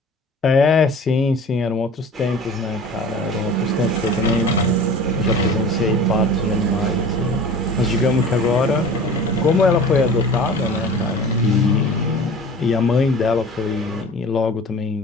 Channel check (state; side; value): normal; both; correlation 0.41